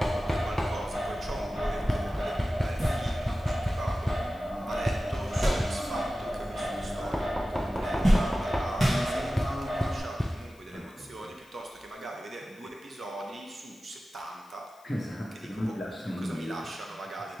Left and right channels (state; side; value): noise; left; hiss, 28 dB below the sound